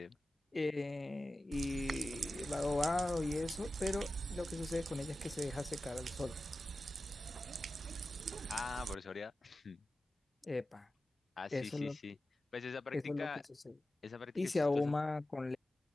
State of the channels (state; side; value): normal; both; correlation 0.94